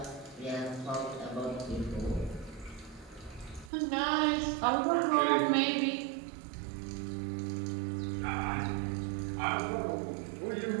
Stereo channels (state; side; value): drops out; left; at 3.7 s